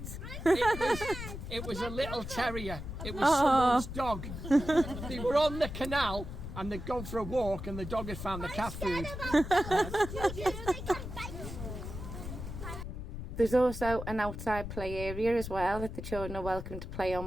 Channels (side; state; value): left; noise; rumble, 8 dB below the sound